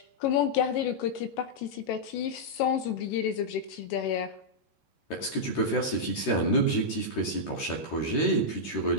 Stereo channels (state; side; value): late; right; 13 ms